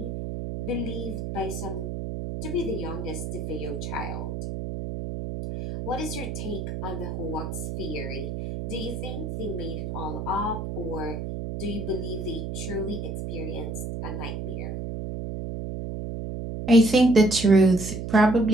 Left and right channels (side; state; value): right; noise; hum, 5 dB below the sound